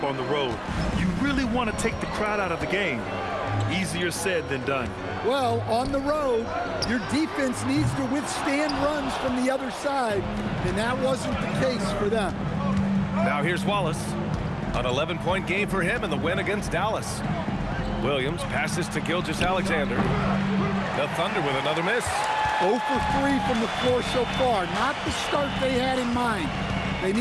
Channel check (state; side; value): identical; both; correlation 1.00